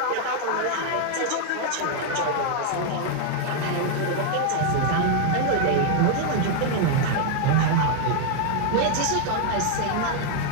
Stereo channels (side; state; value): both; different; correlation 0.01